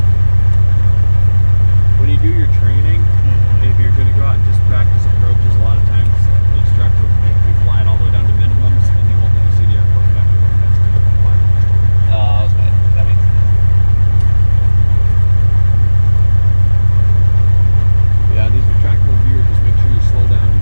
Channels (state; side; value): inverted; both; correlation -1.00